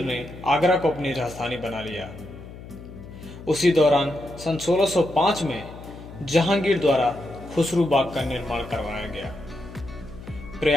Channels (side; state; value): left; noise; hum, 15 dB below the sound